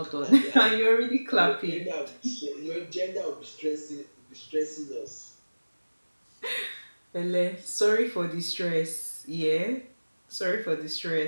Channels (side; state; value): both; inverted; correlation -1.00